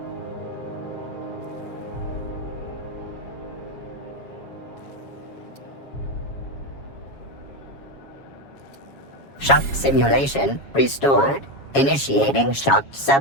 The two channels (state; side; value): late; right; 7.3 ms